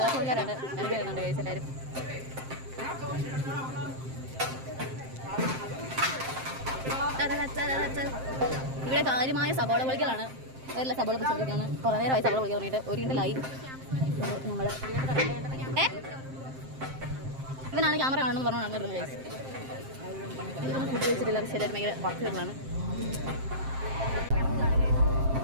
ഇറങ്ങി വരുന്നുണ്ട് ഗൈസ് എല്ലാവരും. ഇവിടെ കാര്യമായ സബോള പൊളിക്കലാണ്, വേറെ സബോള പൊളിച്ചാണ്. കുറേ നേരമായി സബോള പൊളിക്കാൻ തുടങ്ങിയിട്ട് ഒരു കിണ്ടലായി. നമ്മൾ ഇവനാണ് ക്യാമറ കാണുമെന്ന് പറഞ്ഞു നടന്നിരുന്നത് ഗൈസ്. ഇതൊന്നും ഫുഡ് വെച്ചിട്ടില്ല, പക്ഷേ എല്ലാവരും ഭയങ്കര വർക്ക് വരുന്നതാണ്.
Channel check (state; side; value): late; left; 7.6 ms